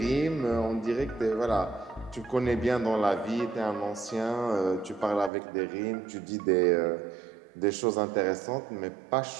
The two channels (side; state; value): left; drops out; at 5.3 s